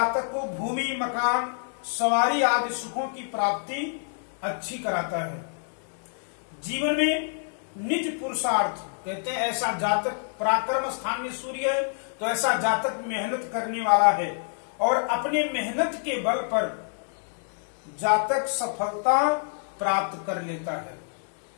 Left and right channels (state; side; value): silent; right; digital silence